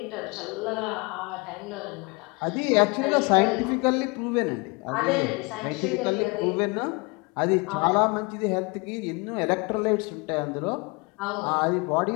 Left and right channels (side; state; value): right; quieter; 28.3 dB